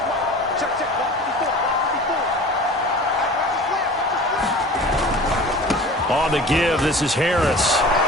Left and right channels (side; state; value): both; normal; correlation 0.40